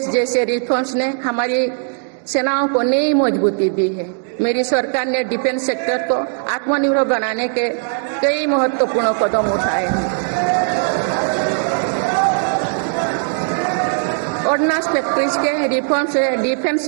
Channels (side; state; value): left; silent; 56 dB below the other